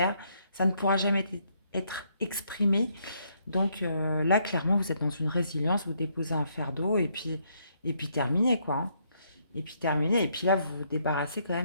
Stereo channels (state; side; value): inverted; both; correlation -0.72